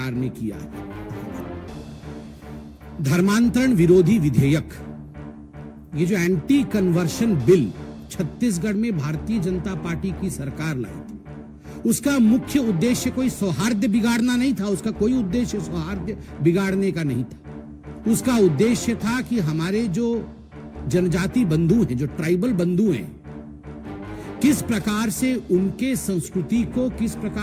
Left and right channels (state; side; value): identical; both; correlation 1.00